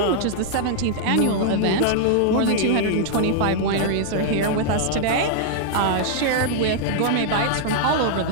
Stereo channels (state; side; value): different; both; correlation -0.01